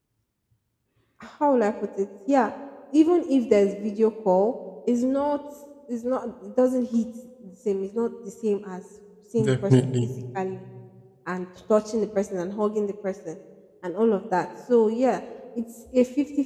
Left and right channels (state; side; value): identical; both; correlation 1.00